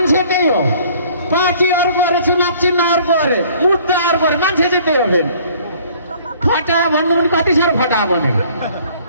त्यही हो, पार्टी अर्को अरे, चुनाव चिन्ह अर्को अरे, मुद्दा अर्को अरे, मान्छे चाहिँ त्यही हो। फेरि फटा भन्नु पनि कति साह्रो फटा बनेको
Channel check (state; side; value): inverted; both; correlation -0.56